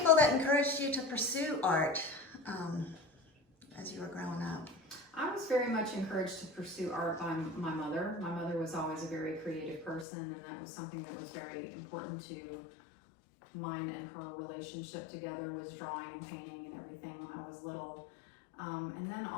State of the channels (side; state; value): right; drops out; at 10.1 s